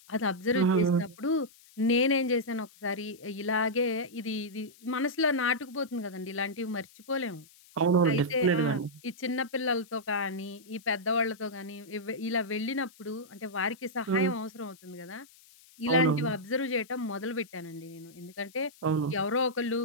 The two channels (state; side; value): noise; left; hiss, 25 dB below the sound